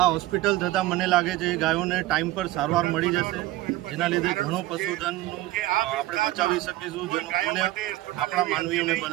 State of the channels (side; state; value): left; quieter; 17.0 dB